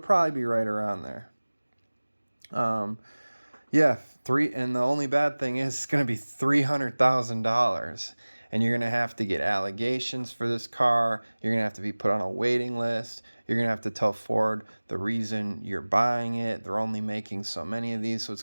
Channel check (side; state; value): both; inverted; correlation -1.00